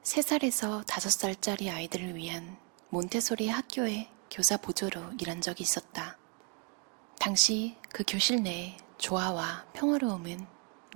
3살에서 5살짜리 아이들을 위한 몬테소리 학교의 교사 보조로 일한 적이 있었다. 당시 그 교실 내의 조화와 평화로움은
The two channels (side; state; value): left; quieter; 31.8 dB